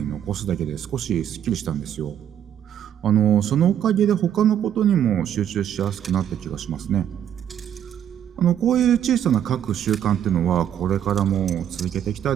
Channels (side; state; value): left; quieter; 9.9 dB